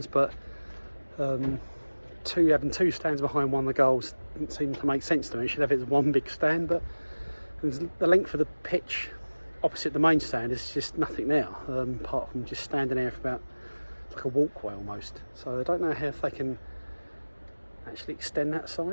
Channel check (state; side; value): inverted; both; correlation -1.00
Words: but having 2 stands behind one of the goals didn't seem to make sense to me. You should have it as one big stand, but the length of the pitch opposite the main stand is just nothing there, apart from just standing there for about like a walkway almost. So I don't know how if they can actually extend that